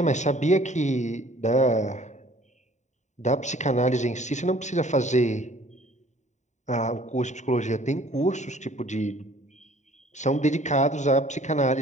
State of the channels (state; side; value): late; right; 0.34 ms